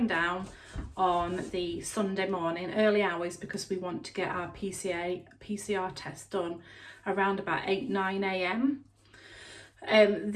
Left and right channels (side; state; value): both; identical; correlation 1.00